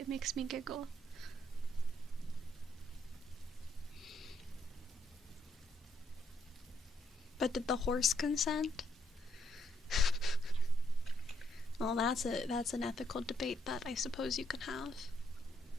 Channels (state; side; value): normal; both; correlation 0.74